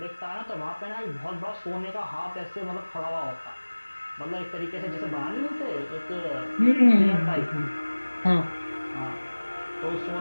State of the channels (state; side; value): inverted; both; correlation -1.00